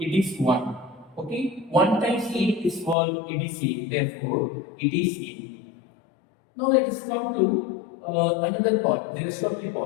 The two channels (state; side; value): drops out; right; at 3.0 s